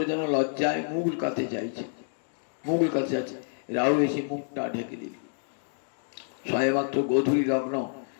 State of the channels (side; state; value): right; silent; digital silence